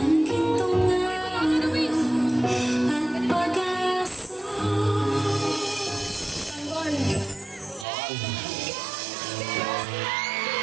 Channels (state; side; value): drops out; left; at 7.9 s